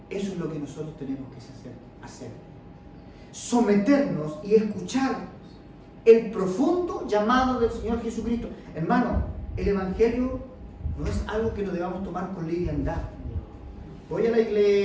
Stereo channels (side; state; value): both; identical; correlation 1.00